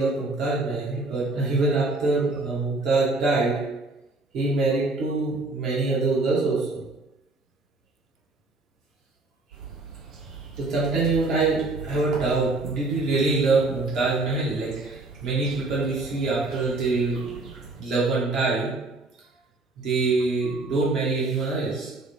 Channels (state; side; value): quieter; left; 3.2 dB